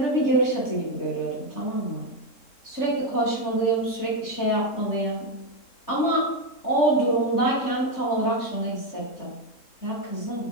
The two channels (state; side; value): late; right; 3.7 ms